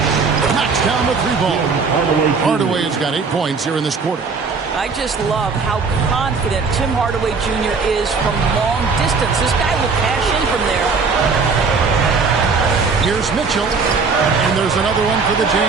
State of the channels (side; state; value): left; quieter; 4.8 dB